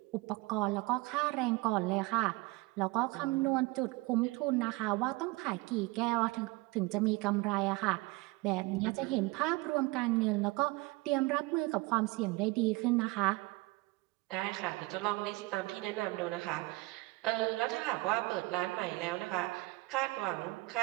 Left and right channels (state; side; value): quieter; left; 22.8 dB